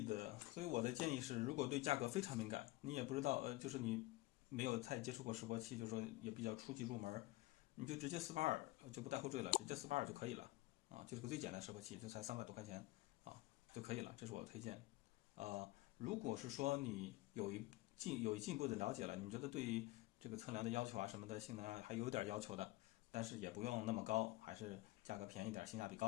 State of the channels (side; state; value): right; quieter; 19.4 dB